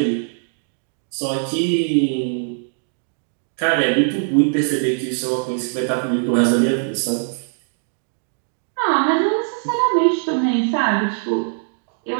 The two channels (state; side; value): silent; left; digital silence